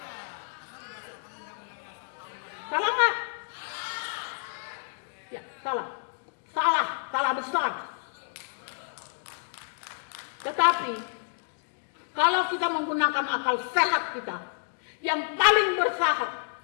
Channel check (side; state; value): right; silent; digital silence